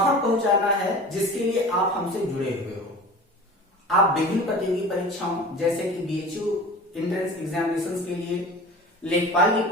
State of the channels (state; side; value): normal; both; correlation 0.38